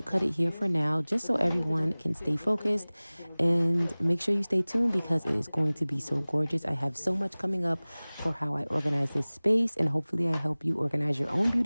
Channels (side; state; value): both; inverted; correlation -1.00